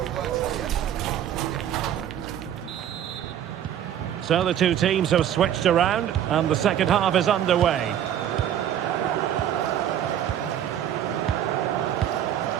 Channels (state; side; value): quieter; left; 10.5 dB